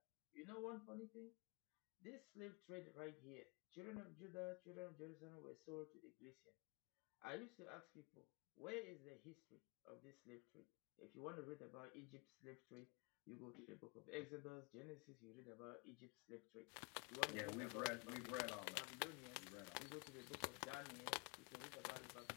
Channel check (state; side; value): quieter; right; 30.1 dB